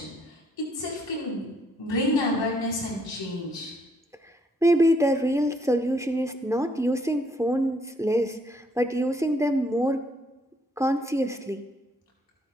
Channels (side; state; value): both; normal; correlation 0.69